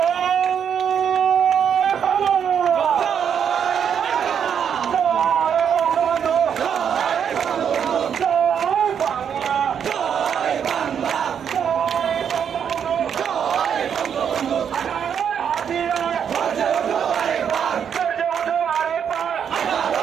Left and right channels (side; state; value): left; quieter; 8.0 dB